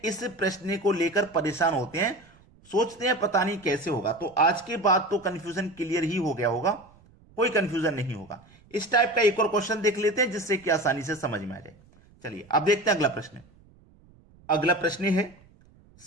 इस प्रश्न को लेकर परेशान होते हैं, सोचते हैं पता नहीं कैसे होगा। तो आज के बाद तो कंफ्यूजन क्लियर ही हो गया होगा, कोई कंफ्यूजन नहीं होगा। इस टाइप का एक और क्वेश्चन देख लेते हैं जिससे कि आसानी से समझ में आ जाए। चलिए अब देखते हैं अगला प्रश्न। अगला प्रश्न है,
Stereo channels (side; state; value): right; noise; rumble, 28 dB below the sound